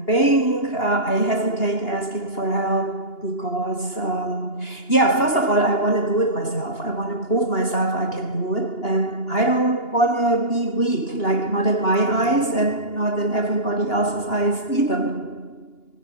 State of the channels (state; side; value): late; right; 2.8 ms